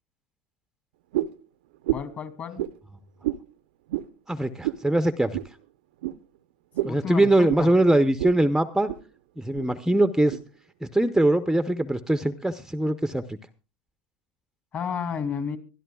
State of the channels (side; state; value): both; normal; correlation 0.85